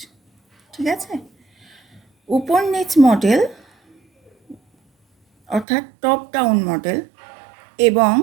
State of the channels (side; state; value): left; drops out; at 5.7 s